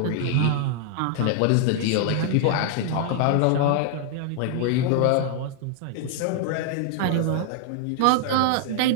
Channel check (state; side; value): different; both; correlation 0.00